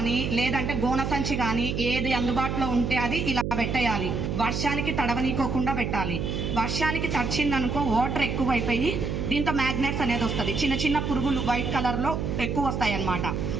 లేదంటే గోన సంచి కానీ, ఏది అందుబాటులో ఉంటే అది ఇలా పెట్టేయాలి. వర్షానికి తడవనీకోకుండా పెట్టాలి. వర్షానికి తడిచిందనుకో వాటర్ ఎక్కువైపోయి దీంతో మ్యాగ్నెట్స్ అనేది వస్తుంది. చిన్న చిన్న పురుగులు వైట్ కలర్లో ఎక్కువ వస్తాయి అన్నమాట.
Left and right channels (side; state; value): right; noise; hum, 2 dB below the sound